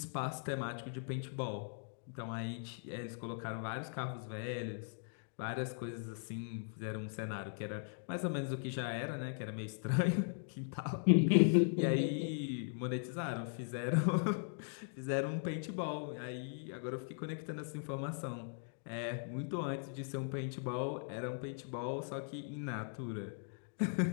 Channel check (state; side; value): silent; right; digital silence